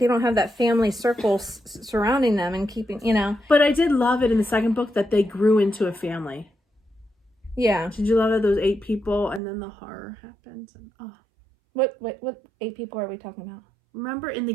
don't have that family circle surrounding them and keeping, But I did love it in the second book that they grew into a family. Yeah. Did you love it? Those 8 people, and then the horror happens. And, What 8 people are we talking about? Remember in the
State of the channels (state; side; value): drops out; left; at 9.4 s